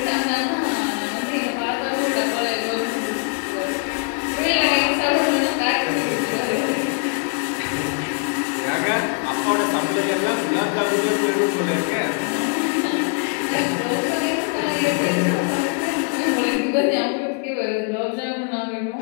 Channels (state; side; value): quieter; right; 36.3 dB